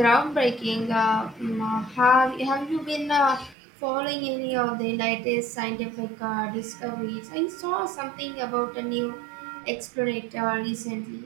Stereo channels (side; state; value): left; drops out; at 3.6 s